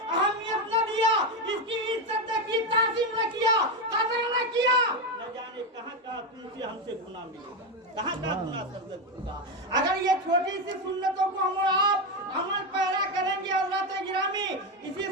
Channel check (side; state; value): both; normal; correlation 0.11